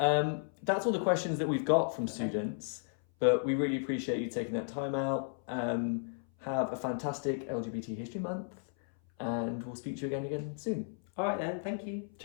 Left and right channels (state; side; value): silent; right; 55 dB below the other